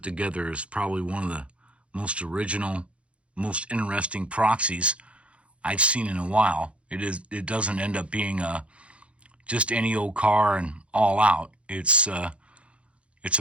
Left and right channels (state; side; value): late; left; 0.061 ms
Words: together is probably one of the most original, most interesting proxies I've seen in a while. It doesn't end up being just any old car and all out. It's a